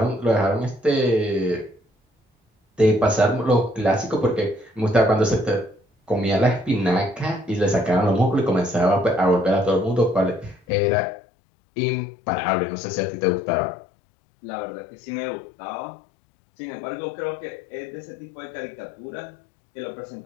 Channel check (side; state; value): right; drops out; at 10.6 s